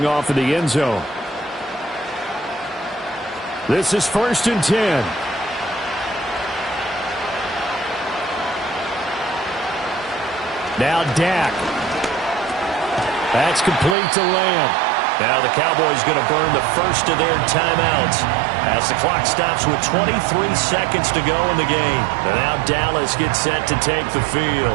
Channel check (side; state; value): left; drops out; at 14.0 s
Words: off in the end zone. This is 1st and 10. Now Dak. That's complete to Lamb. Now the Cowboys going to burn the first of their timeouts as the clock stops with 23 seconds to go in the game. And now Dallas gets set to take the